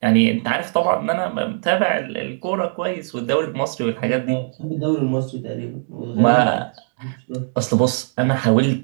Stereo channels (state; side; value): silent; left; digital silence